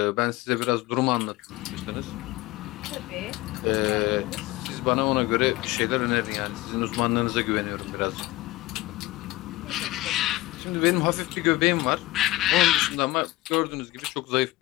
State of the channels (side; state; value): right; quieter; 18.3 dB